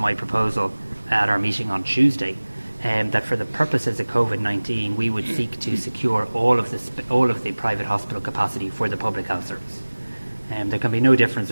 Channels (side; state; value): both; inverted; correlation -1.00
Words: proposal at our meeting on Tuesday that for the purposes of Covid-19, we would seek to secure all of the private hospital capacity for the public health service. There can be no difference